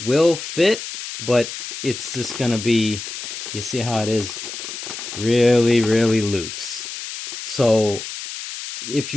will fit, but it's just gonna be, you see how it is? Really, really loose. So if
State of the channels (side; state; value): left; noise; hiss, 8 dB below the sound